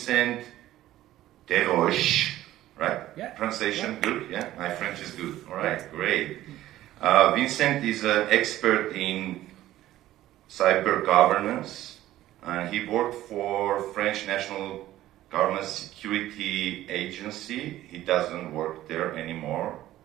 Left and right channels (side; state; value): left; quieter; 14.4 dB